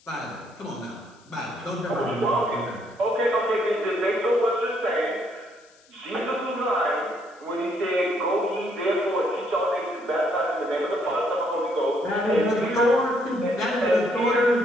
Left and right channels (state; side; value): noise; left; hiss, 30 dB below the sound